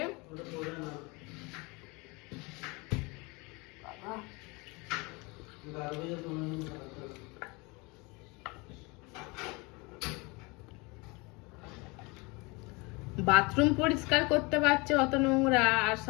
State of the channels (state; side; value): quieter; right; 27.1 dB